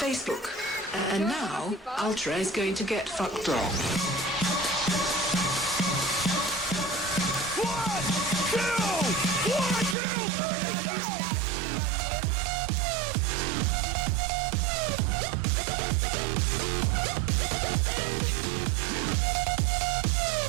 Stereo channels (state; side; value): drops out; left; at 10.0 s